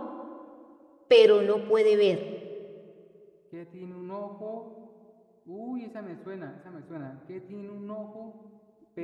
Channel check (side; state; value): both; identical; correlation 1.00